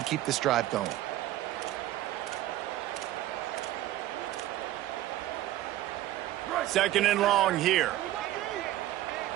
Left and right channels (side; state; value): left; quieter; 14.5 dB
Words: keep this drive going. Second and long here.